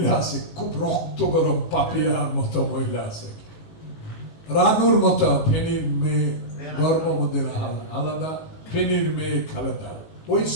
আছে, খুব রক্ত গরম পাপিয়ার মতো মহিলা আছে, রানুর মতো, ফেনীর মেয়ে গর্ভমদের আলাদা, ফেনীর মেয়ে খালেদা, ওই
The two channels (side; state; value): right; late; 18 ms